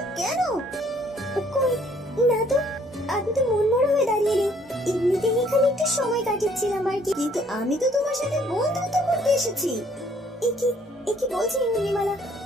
কেন? কই না তো, আমি তো মন মরা হয়ে দাঁড়িয়ে নেই, এমনিতেই এখানে একটু সময় কাটাচ্ছিলাম আর কি। কিন্তু আমি তো তোমার সাথে বন্ধুত্ব করতে এসেছি। এ কি বলছি উর্মিমালা?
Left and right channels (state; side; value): normal; both; correlation 0.63